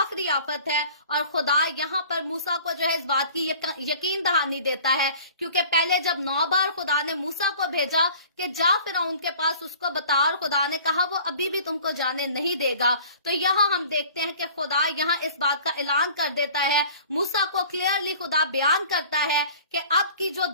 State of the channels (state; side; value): inverted; both; correlation -0.47